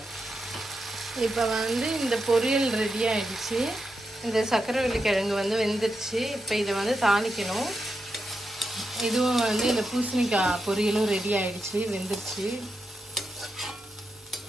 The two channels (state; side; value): normal; both; correlation 0.87